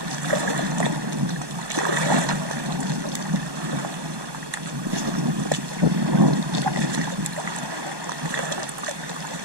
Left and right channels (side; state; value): left; late; 1.2 ms